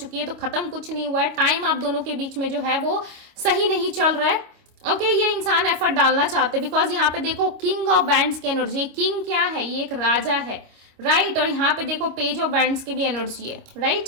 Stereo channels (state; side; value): late; left; 26 ms